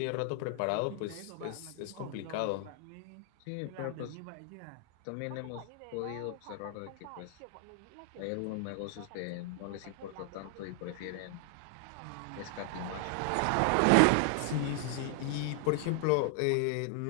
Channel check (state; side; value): different; both; correlation 0.00